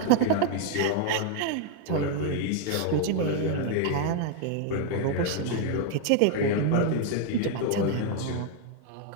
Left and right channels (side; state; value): both; different; correlation 0.00